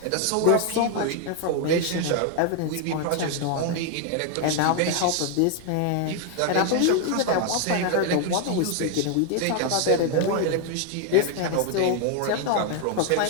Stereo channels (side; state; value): both; different; correlation 0.01